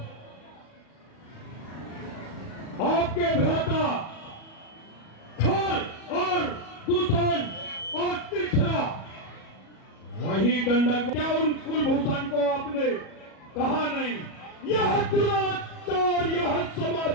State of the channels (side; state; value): right; late; 37 ms